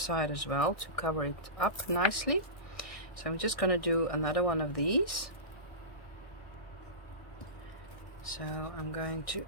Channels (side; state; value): right; late; 1.6 ms